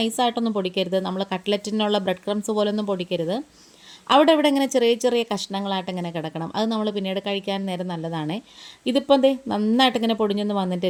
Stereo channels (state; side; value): identical; both; correlation 1.00